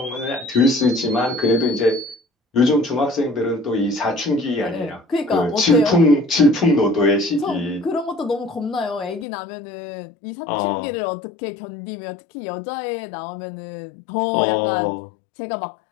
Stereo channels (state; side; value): drops out; right; at 9.2 s